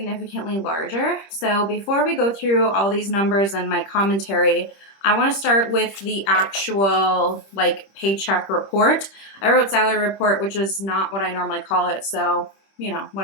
larger. So before we go through all these numbers and my commentary, I want to start with the actual paycheck report. I wrote salary report, which is not what I normally call it. So,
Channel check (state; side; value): late; right; 26 ms